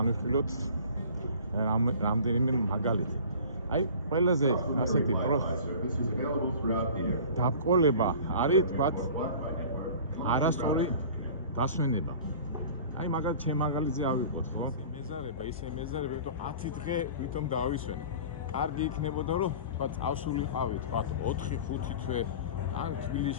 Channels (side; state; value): both; inverted; correlation -0.42